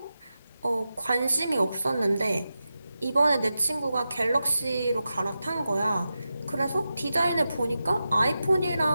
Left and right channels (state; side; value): inverted; both; correlation -0.91